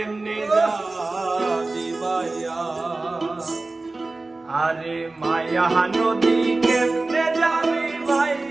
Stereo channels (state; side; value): quieter; left; 3.3 dB